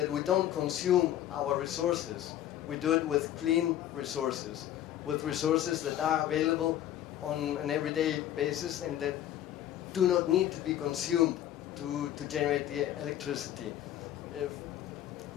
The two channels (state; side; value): quieter; right; 11.9 dB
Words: don't consume our resources. We do it with clean resources, with resources that are available on an everyday basis and that do not need to be consumed to generate the electricity.